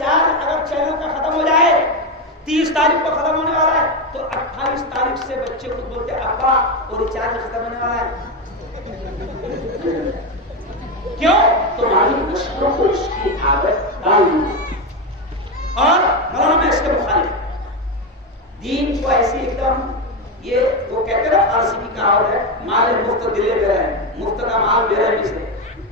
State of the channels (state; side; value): normal; both; correlation 0.12